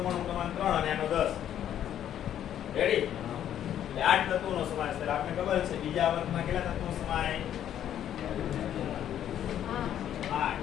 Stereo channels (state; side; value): quieter; right; 10.5 dB